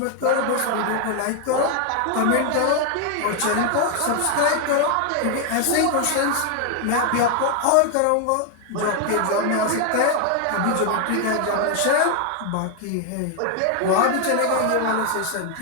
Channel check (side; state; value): both; different; correlation 0.00